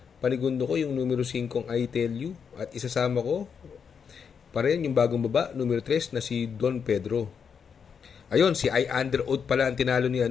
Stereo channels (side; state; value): right; quieter; 6.7 dB